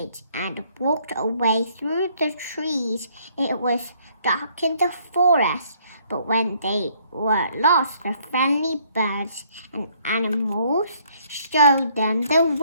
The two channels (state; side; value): inverted; both; correlation -0.65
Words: and walked away through the trees. It was dark in the forest, but when they were lost, the friendly birds and animals showed them the